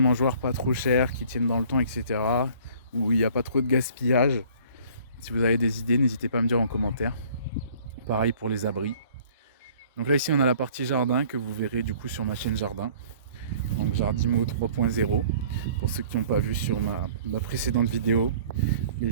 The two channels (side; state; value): both; inverted; correlation -0.53